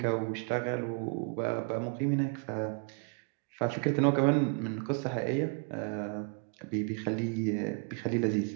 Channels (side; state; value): left; quieter; 36.5 dB